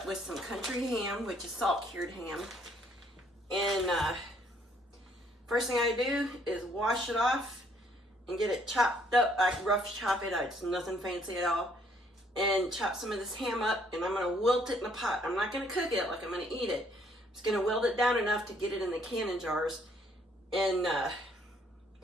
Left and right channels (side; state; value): both; normal; correlation 0.65